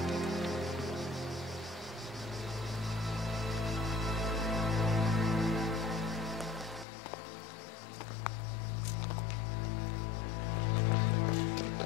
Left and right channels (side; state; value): right; drops out; at 6.9 s